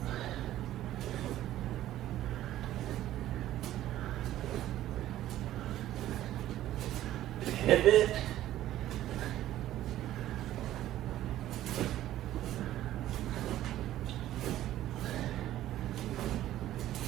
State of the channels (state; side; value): quieter; left; 13.5 dB